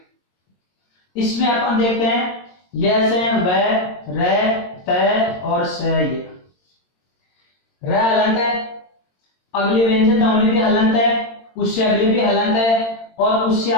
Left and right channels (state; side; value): late; right; 22 ms